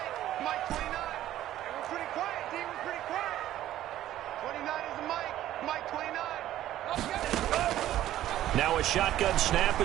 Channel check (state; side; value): quieter; left; 13.2 dB